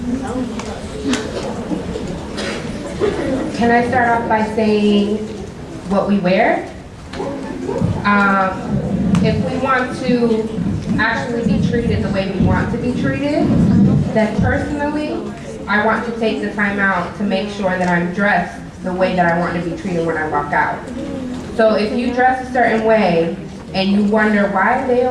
Can I start off by saying what we wear? If we want to actually be treated the way we want to be treated, then personally, I want to take the time out to make sure that I'm dressed the way that I want to be treated when I walk out. So if you dress a certain way and you wonder, why are they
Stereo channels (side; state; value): both; identical; correlation 1.00